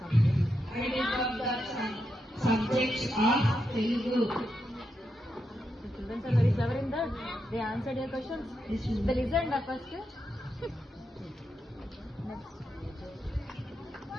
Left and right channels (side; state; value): both; normal; correlation 0.84